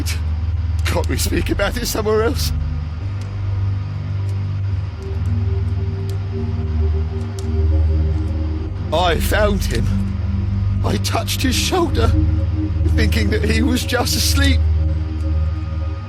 Can't we speak about it somewhere else? I found him. I touched his shoulder, thinking that he was just asleep.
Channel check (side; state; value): both; identical; correlation 1.00